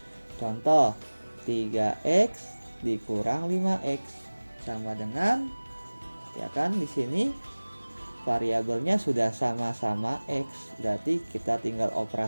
Contoh 3x dikurang 5x sama dengan, ya kan, di sini variabelnya sudah sama-sama x, berarti kita tinggal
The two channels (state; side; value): inverted; both; correlation -1.00